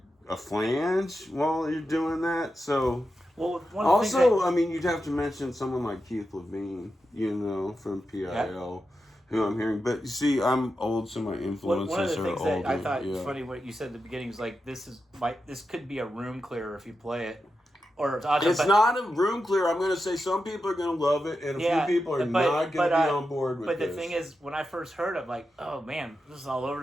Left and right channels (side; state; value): both; normal; correlation 0.89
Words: a flange while you're doing that. So you'd have to mention someone like Keith Levine, from PIL, who I'm hearing. But you see, I'm old, so my influences one of the are things older. that I thought was funny what you said at the beginning is this could be a room clearer if you play it. Or it's not a room clear. I'm going to say some people are going to love it, and a few people are not going to be on board with it. But this. the thing is, when I first heard it, oh man, this is all over